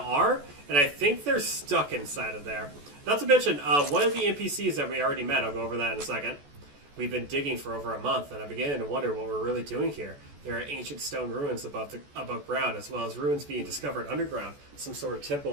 are, and I think they're stuck inside of there. Not to mention, one of the NPCs that we already met, I'll go over that in a second. We've been digging for over a month, and I'm beginning to wonder what we're really doing here. There are ancient stone ruins above ground, as well as ruins being discovered underground. Some sort of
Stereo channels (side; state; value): left; late; 14 ms